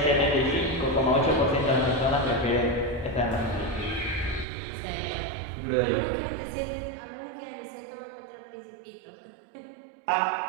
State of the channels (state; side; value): drops out; left; at 4.5 s